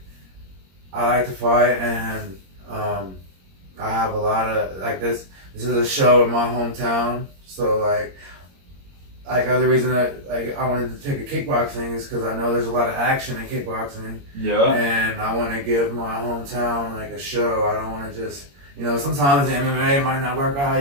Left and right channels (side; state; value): left; late; 21 ms